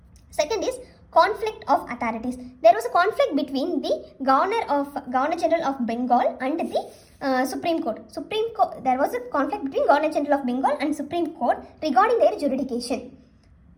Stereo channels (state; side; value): identical; both; correlation 1.00